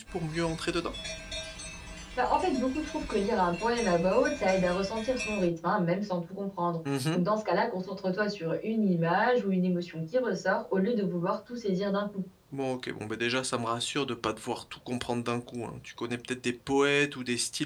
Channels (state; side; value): identical; both; correlation 1.00